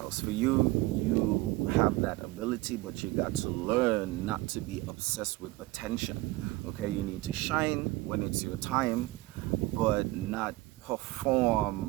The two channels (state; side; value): quieter; left; 20.3 dB